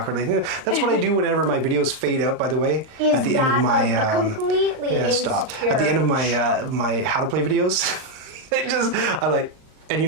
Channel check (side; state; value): left; late; 38 ms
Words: That's what I do whenever my videos fade out, by the way. At the end of my completely insecure. At the end of my how to play videos, and you